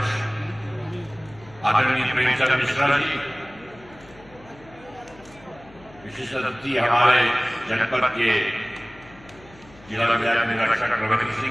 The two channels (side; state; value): left; noise; hum, 24 dB below the sound